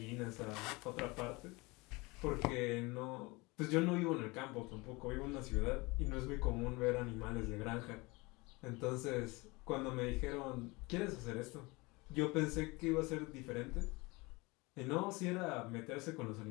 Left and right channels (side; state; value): right; quieter; 24.6 dB